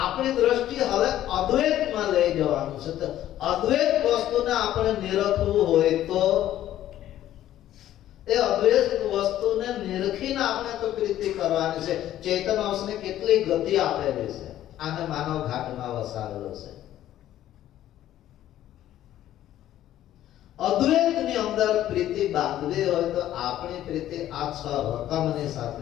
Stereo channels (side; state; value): right; quieter; 12.7 dB